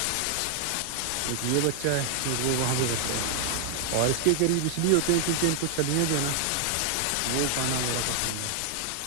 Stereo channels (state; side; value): different; both; correlation 0.00